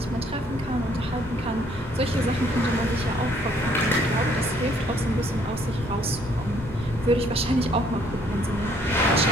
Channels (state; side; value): normal; both; correlation 0.64